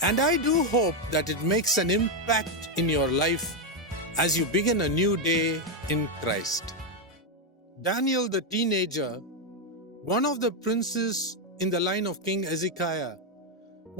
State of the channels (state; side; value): normal; both; correlation 0.03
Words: And I do hope that it makes an impact in your life as you begin a new day in Christ. Daniel the teenager, one of the princes in the line of King Hezekiah,